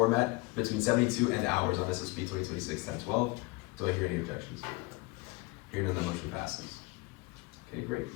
between 72 and hours on SSB 2026-1012. Do I hear any objections? Hearing none, the motion passes. Okay,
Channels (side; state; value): right; quieter; 24.6 dB